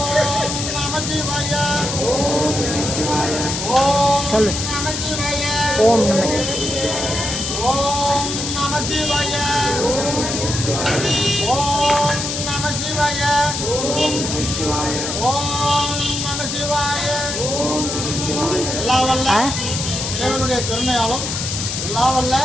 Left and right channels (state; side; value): noise; left; hiss, 3 dB below the sound